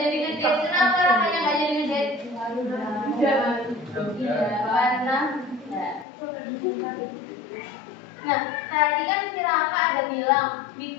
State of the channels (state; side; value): drops out; right; at 6.1 s